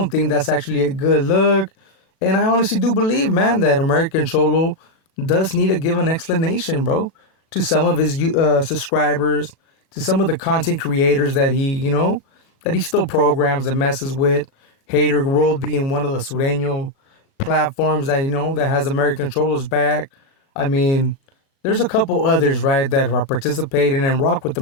think that's actually a good look. And I honestly do believe, man, that American Cholo does need to give an explanation, bro, to some of his subscribers, to some of the content creators that he still programs and messes with. Hater World being one of the Sureño platforms that that has American Cholo's back. I mean, there's a couple others, right, that are participating and rock with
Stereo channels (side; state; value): right; late; 36 ms